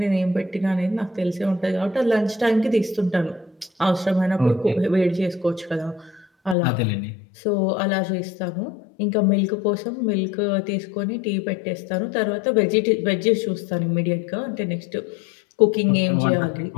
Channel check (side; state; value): right; drops out; at 6.6 s